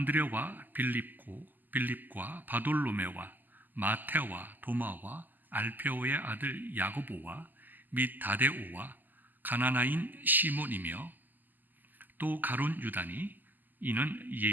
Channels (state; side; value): late; left; 0.087 ms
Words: 빌립과 바돌로메와 마테와 도마와 알페오의 아들 야고보와 및 다데오와 가나나인 시몬이며 또 가룟 유다니 이는